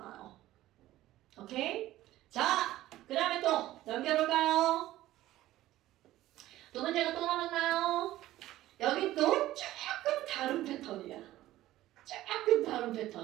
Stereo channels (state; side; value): quieter; left; 15.2 dB